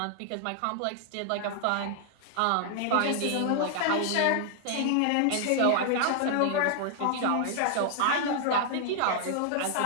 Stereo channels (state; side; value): different; both; correlation 0.00